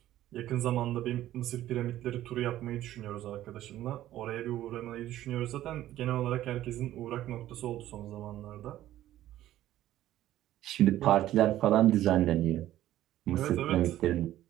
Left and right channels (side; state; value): left; quieter; 13.6 dB